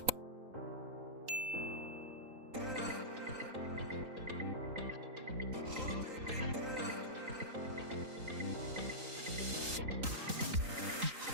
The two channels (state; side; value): late; left; 3.8 ms